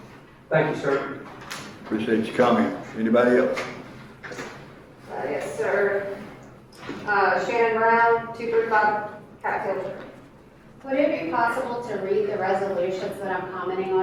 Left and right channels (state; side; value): identical; both; correlation 1.00